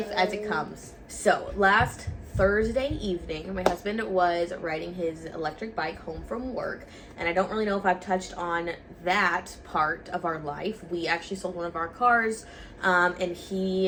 as it comes. So last Thursday evening, my husband was riding his electric bike home from work, and I don't really know if I've touched on that part of our life. We actually sold one of our cars, and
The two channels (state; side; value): identical; both; correlation 1.00